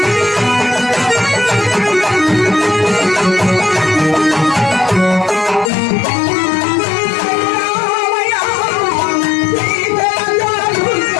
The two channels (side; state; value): right; drops out; at 5.7 s